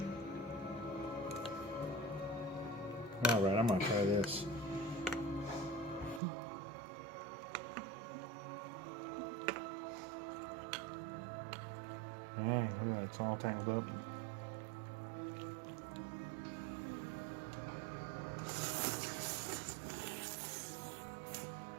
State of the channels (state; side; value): drops out; left; at 6.2 s